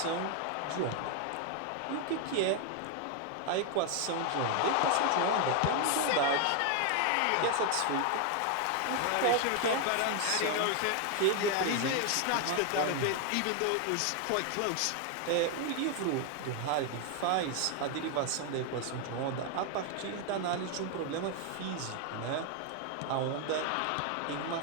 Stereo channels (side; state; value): both; different; correlation 0.01